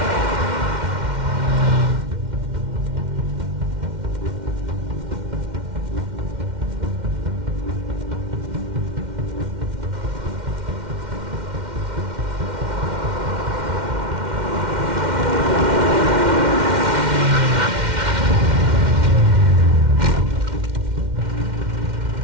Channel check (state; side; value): late; left; 2.1 ms